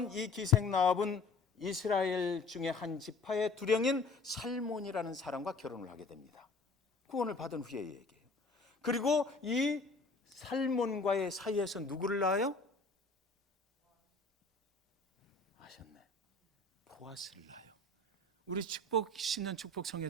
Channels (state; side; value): quieter; right; 3.5 dB